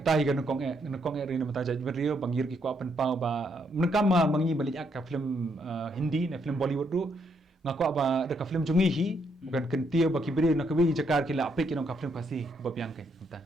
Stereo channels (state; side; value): normal; both; correlation 0.75